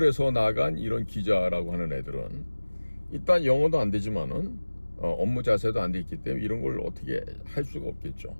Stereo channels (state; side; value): inverted; both; correlation -1.00